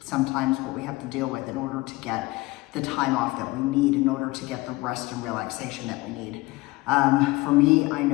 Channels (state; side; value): quieter; right; 21.4 dB